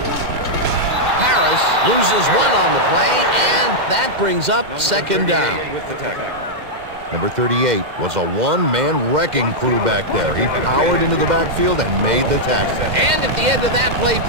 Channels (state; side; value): late; left; 2.1 ms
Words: Harris loses one on the play, and that brings up second down. With the tackle. Number 38 was a one-man wrecking crew back there. He powered into the backfield and made the tackle. And at the end of that play,